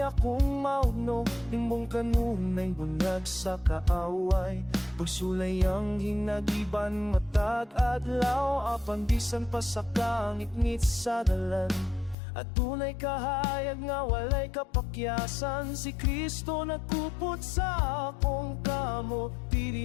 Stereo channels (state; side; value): drops out; right; at 12.2 s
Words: mauno, imong kanunay bunag sa kaaway. Pagsulay ang hinagiban matag adlaw, apan bisan pa sa kangit-ngit sa dalan. At tunay kahayag nga walay kapakyasan, si Kristo nagkupot sa akong kamo.